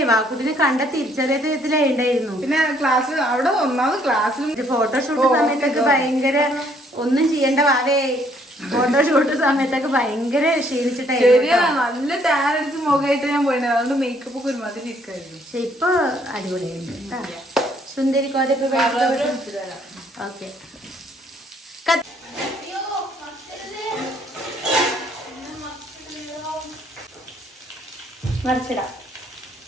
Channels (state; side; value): normal; both; correlation 0.65